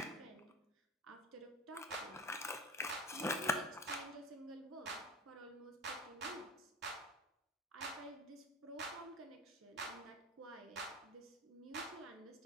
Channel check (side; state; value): both; normal; correlation 0.31